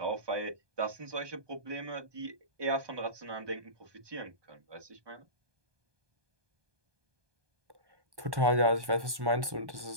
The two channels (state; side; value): late; left; 1.2 ms